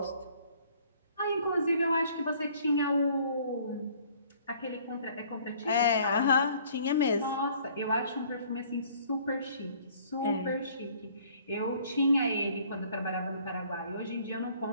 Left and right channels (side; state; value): both; inverted; correlation -0.57